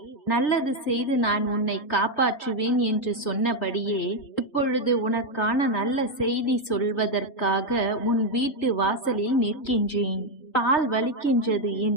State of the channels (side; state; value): right; late; 3.4 ms